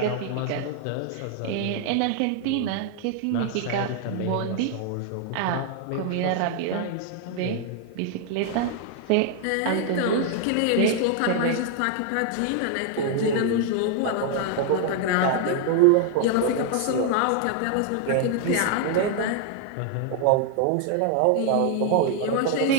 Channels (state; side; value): different; both; correlation 0.00